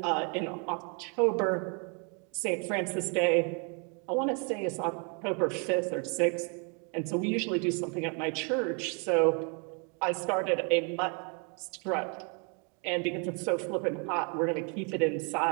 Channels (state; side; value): quieter; left; 36.8 dB